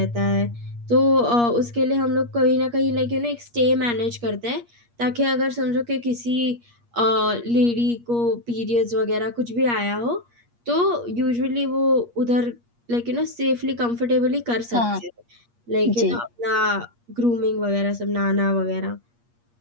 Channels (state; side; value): late; left; 8.5 ms